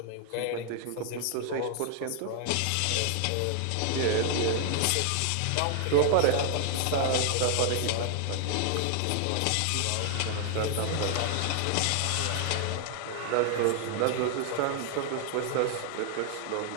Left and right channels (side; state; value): both; different; correlation 0.00